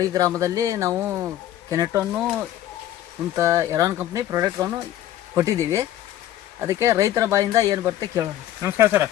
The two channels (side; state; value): right; quieter; 12.5 dB